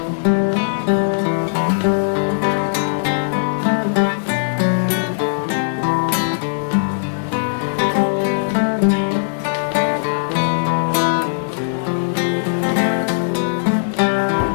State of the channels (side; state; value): right; silent; digital silence